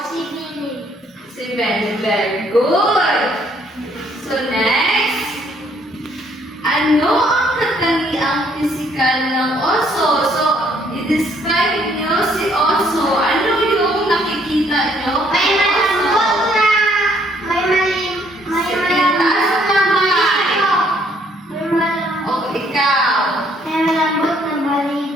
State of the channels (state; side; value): normal; both; correlation 0.66